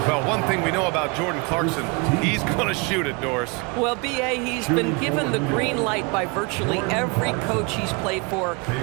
Well, one thing we know about Jordan Clarkson, he's going to shoot it, Doris. Well, B.A., he's been given the green light by virtually every coach he's played for.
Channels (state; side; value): quieter; left; 29.6 dB